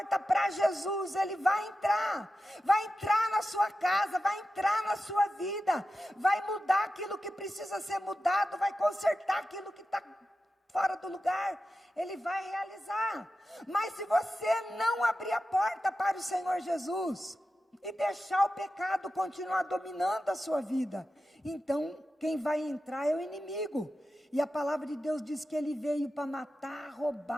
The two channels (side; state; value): both; normal; correlation 0.92